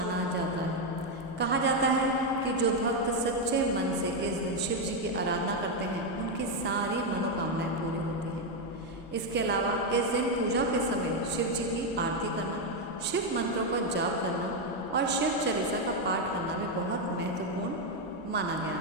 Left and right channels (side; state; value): both; normal; correlation 0.04